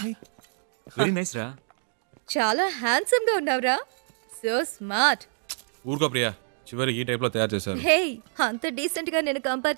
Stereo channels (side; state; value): left; silent; 55 dB below the other